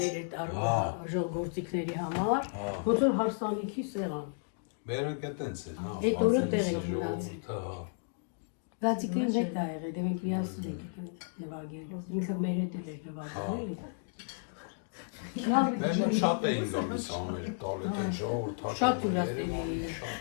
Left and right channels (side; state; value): right; silent; digital silence